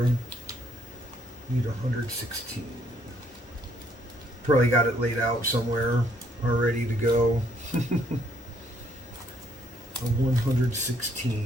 Need 116. Probably got it laid out somewhere, all ready to go. A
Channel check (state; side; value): normal; both; correlation 0.67